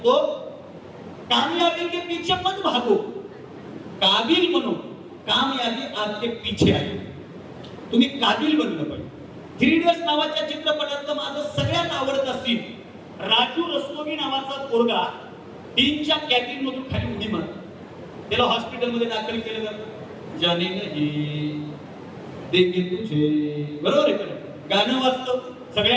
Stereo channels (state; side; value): identical; both; correlation 1.00